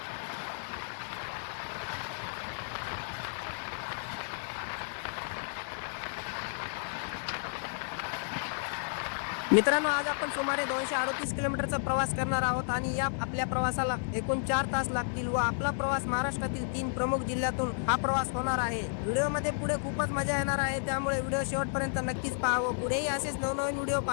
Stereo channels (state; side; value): silent; right; 56 dB below the other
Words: मित्रांनो, आज आपण सुमारे 238 किलोमीटरचा प्रवास करणार आहोत आणि या आपल्या प्रवासाला एकूण 4 तास लागतील व आपला प्रवास महाराष्ट्रातील 3 प्रमुख जिल्ह्यातून हा प्रवास होणार आहे. व्हिडिओमध्ये पुढे खूपच मजा येणार आहे, त्यामुळे व्हिडिओ शेवटपर्यंत नक्कीच पाहावं. पुढेही असेच नवनवीन व्हिडिओ